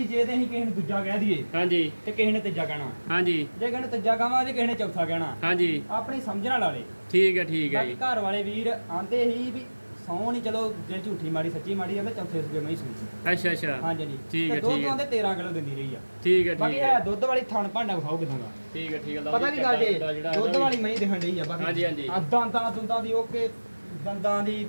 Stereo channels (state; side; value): inverted; both; correlation -1.00